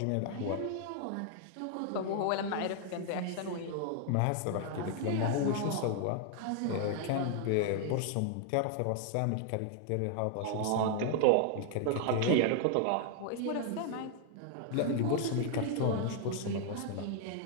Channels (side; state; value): both; different; correlation 0.00